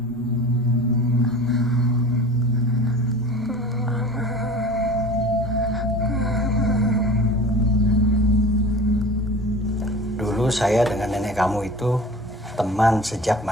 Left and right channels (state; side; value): normal; both; correlation 0.39